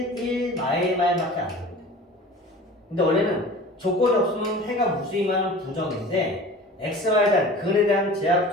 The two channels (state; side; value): normal; both; correlation 0.41